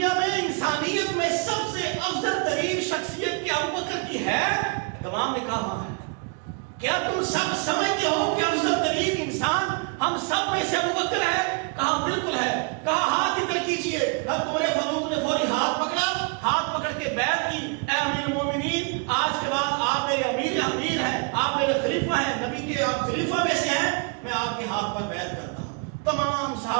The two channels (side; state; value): left; quieter; 33.2 dB